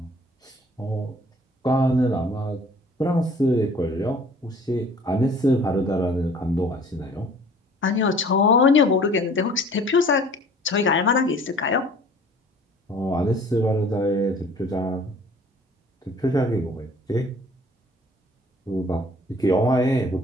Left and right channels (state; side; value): normal; both; correlation 0.51